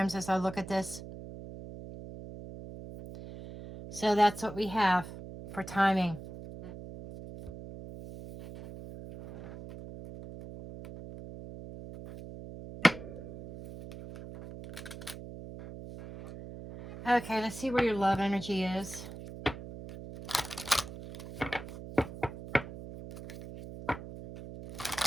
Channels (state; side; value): noise; right; hum, 12 dB below the sound